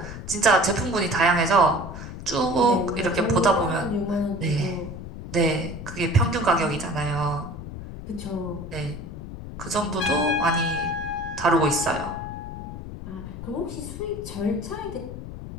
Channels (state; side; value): noise; left; rumble, 10 dB below the sound